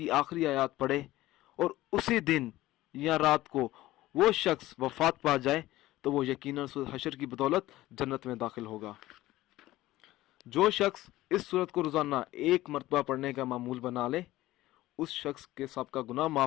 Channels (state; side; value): quieter; right; 16.5 dB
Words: आखिरी आयत पढ़े और उसी दिन या रात को वो शख्स वफ़ात पा जाए तो वो यकीनन सूरत हशर की बदौलत जन्नत में दाखिल होगा। जो शख्स इस सूरत को रोज़ाना एक मरतबा पढ़ने का मामूल बना ले, उस शख्स के सबका गुनाह